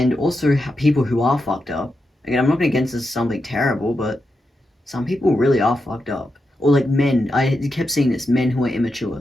also, people who are fucked up. Again, I'm not going to get into something terrible, but some people really are fucked up. Or like men. I kept seeing this. Men who are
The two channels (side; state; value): both; normal; correlation 0.87